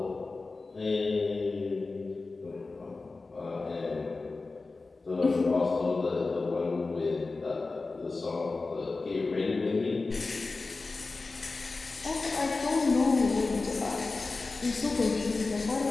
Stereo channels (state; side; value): quieter; right; 3.7 dB